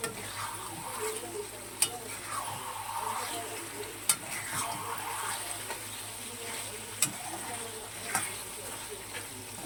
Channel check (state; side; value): identical; both; correlation 1.00